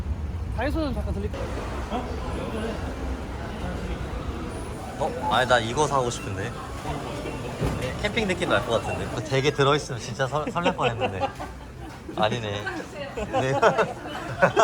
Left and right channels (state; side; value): identical; both; correlation 1.00